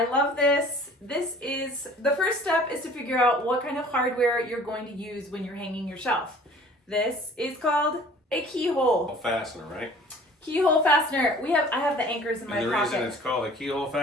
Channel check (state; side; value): normal; both; correlation 0.49